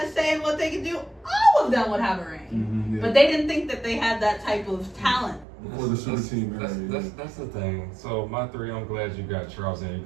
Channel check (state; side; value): drops out; left; at 5.5 s